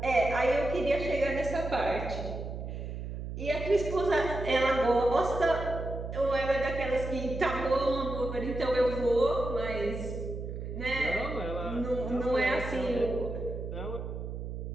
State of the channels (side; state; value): right; noise; hum, 6 dB below the sound